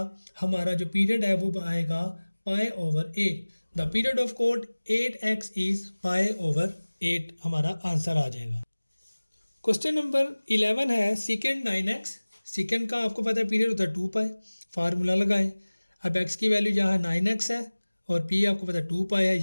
हमारा जो पीरियड है वो आएगा π/8। The period of cot 8x is π/8 हमारा आंसर आ जाएगा। क्वेश्चन नंबर 11 है सेकेंड 9x। सेकेंड का आपको पता है पीरियड होता है 2 पाई। फार्मूला लगाएं। अब x की वैल्यू जहाँ 9x है और p आपको पता है 2 पाई है,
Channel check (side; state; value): both; inverted; correlation -1.00